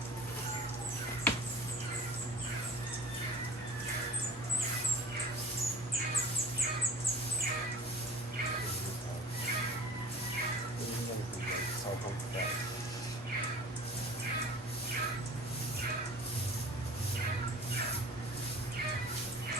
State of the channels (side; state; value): both; normal; correlation 0.43